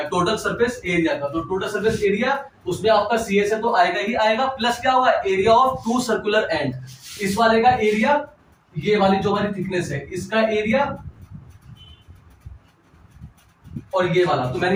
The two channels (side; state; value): both; identical; correlation 1.00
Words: टोटल सरफेस एरिया का। तो टोटल सरफेस एरिया, उसमें आपका सीएसए तो आएगा ही आएगा, प्लस क्या होगा, एरिया ऑफ 2 सर्कुलर एंड, इस वाले का एरिया, ये वाली जो हमारी थिकनेस है इसका एरिया, और ये वाला। तो मैंने